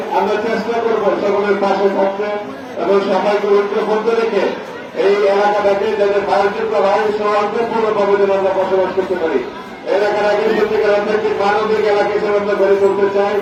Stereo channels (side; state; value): both; identical; correlation 1.00